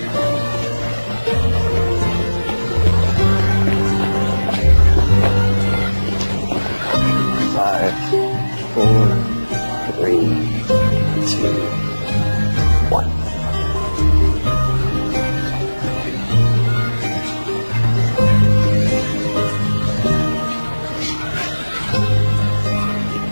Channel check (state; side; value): inverted; both; correlation -1.00